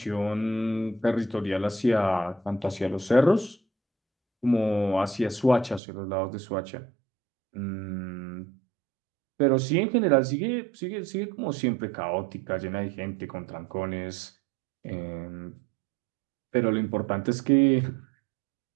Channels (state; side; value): drops out; left; at 5.8 s